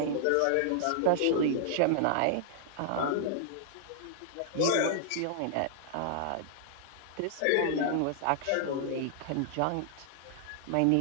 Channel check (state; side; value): different; both; correlation -0.01